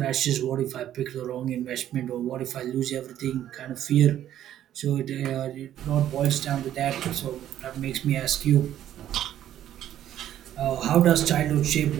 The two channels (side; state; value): left; quieter; 11.6 dB